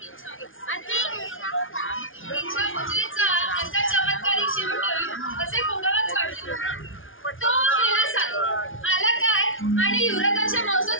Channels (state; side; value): late; right; 0.58 ms